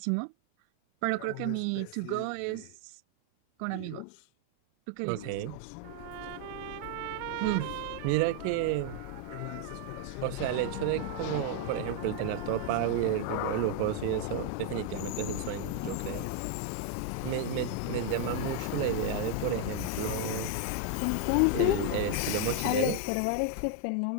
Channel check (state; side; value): different; both; correlation 0.00